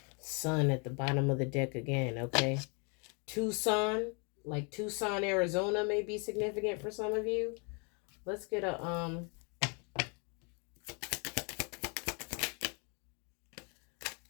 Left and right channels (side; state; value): right; quieter; 34.9 dB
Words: Sun at the bottom of the deck again, okay? Tucson, like Tucson, Arizona may be significant for some of you. Let's get a